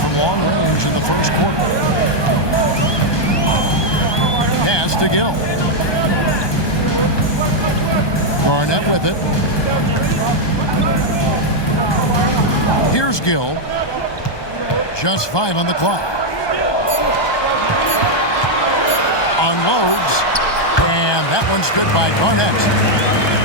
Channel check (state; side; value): late; right; 1.2 ms